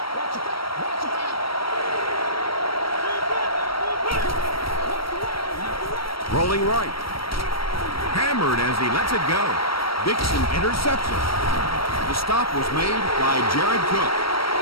Rolling right. Hammered as he lets it go. Dixon intercepts it. The stop was made by Jared Cook.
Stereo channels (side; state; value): right; late; 0.75 ms